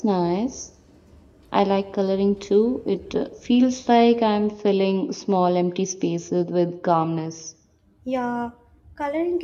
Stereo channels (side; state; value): both; identical; correlation 1.00